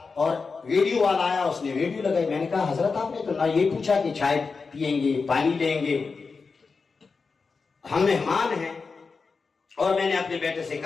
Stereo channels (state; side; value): quieter; right; 4.7 dB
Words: اور ویڈیو والا آیا، اس نے ویڈیو لگائی۔ میں نے کہا حضرت آپ نے تو نہ یہ پوچھا کہ چائے پیئیں گے، پانی لیں گے، ہم مہمان ہیں۔ اور میں نے اپنے بیٹے سے